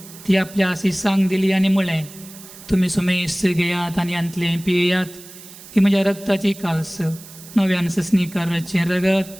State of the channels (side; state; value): right; noise; hiss, 18 dB below the sound